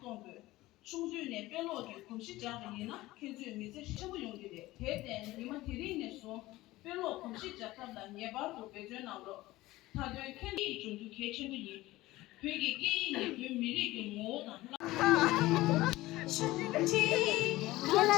중주의 별로의 공시자들이나 견주 미세 시부 용기대 대대는 이만 대리인에서 별로 공시자들단 예바도 배전하로 다들 캔디 중주 개체들이 되게 게임이 미리게 뭐나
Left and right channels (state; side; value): quieter; right; 18.0 dB